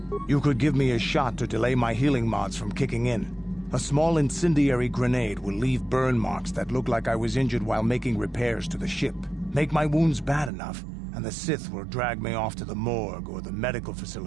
You could give me a shot to delay my healing mods from kicking in. A small incendiary grenade will leave burn marks that look like I was injured while making repairs to the ship. Make my wounds bad enough, and the Sith will drag me off to the morgue or the medical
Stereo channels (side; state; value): left; drops out; at 10.5 s